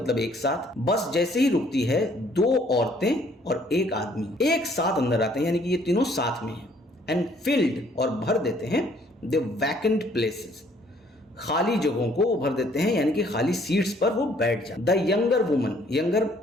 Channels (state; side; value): normal; both; correlation 0.62